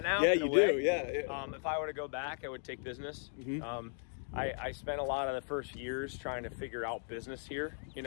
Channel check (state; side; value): silent; right; 53 dB below the other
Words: now. Yeah, you do. Yeah. If I were to go back, I would take business. Mm-hmm. I spent a lot of the first years trying to figure out business here. You